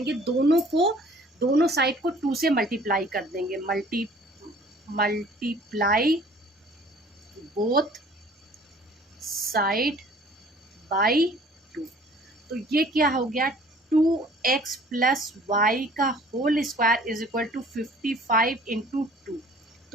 दोनों साइड को 2 से मल्टीप्लाई कर देंगे। Multiply both side by 2। तो ये क्या हो गया, 2x प्लस वाई का whole square is equal to 55 into 2।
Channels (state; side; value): normal; both; correlation 0.52